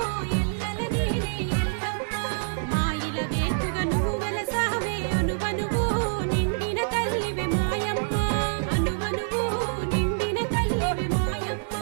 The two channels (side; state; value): left; silent; 61 dB below the other